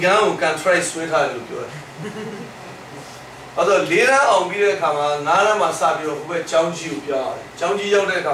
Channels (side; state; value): both; identical; correlation 1.00